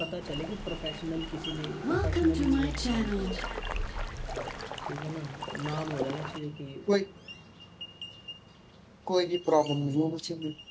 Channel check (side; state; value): both; identical; correlation 1.00